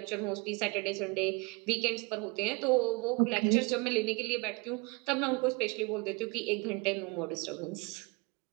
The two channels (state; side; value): quieter; left; 28.6 dB